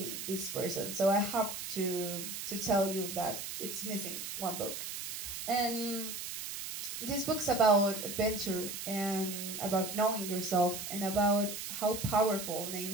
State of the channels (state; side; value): noise; right; hiss, 6 dB below the sound